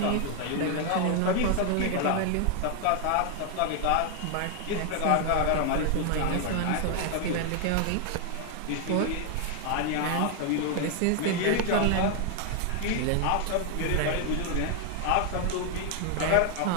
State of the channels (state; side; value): different; both; correlation 0.00